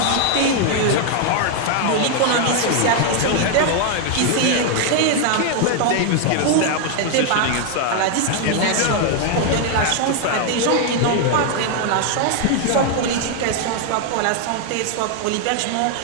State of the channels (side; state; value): both; different; correlation 0.00